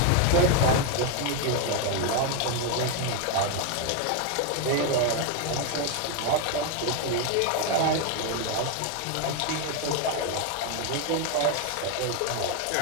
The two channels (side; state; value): both; different; correlation 0.01